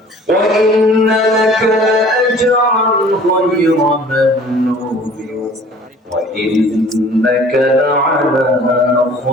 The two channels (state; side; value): normal; both; correlation 0.50